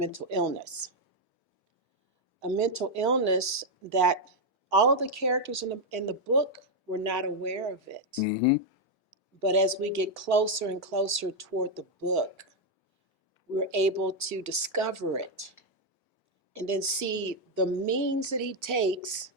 illness. A mental illness that all of the characters in the book were not aware of it. Hmm. But as we get closer and closer toward the book, we're able to discover it and then see the means that he takes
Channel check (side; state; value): both; normal; correlation 0.01